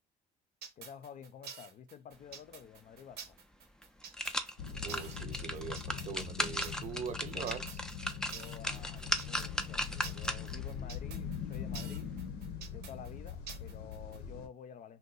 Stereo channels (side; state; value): both; normal; correlation 0.40